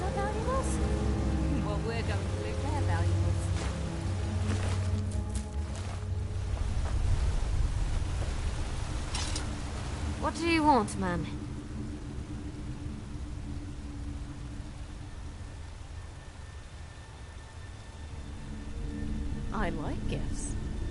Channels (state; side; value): identical; both; correlation 1.00